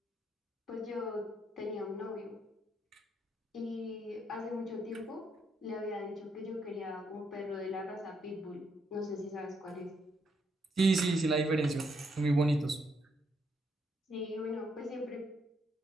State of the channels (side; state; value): both; normal; correlation 0.76